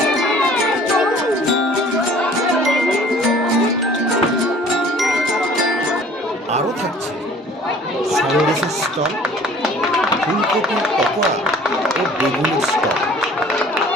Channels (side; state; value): both; normal; correlation 0.51